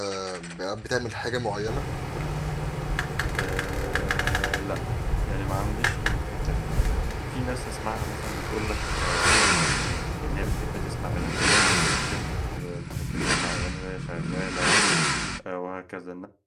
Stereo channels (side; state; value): both; identical; correlation 1.00